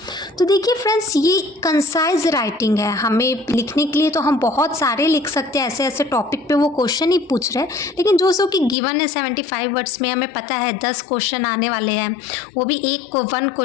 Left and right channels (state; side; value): drops out; right; at 8.8 s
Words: तो देखिए फ्रेंड्स, ये कंसाइज राइटिंग है। हमें लिखने के लिए तो हम बहुत सारे लिख सकते हैं, ऐसे ऐसे टॉपिक पे वो क्वेश्चन ही पूछ रहे हैं, लेकिन जो सो कि गिवन है 75 वर्ड्स में, हमें पता है 10 क्वेश्चन आने वाले हैं, वो भी वन